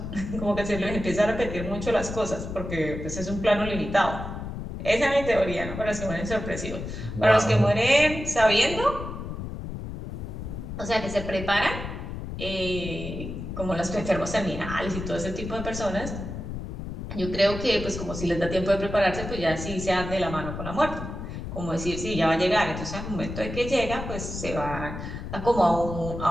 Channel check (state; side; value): noise; left; rumble, 7 dB below the sound